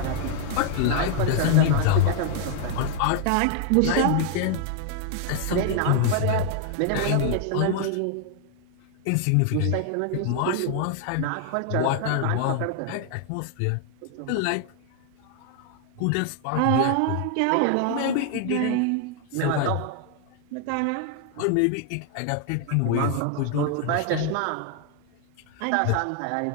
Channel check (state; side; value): different; both; correlation 0.00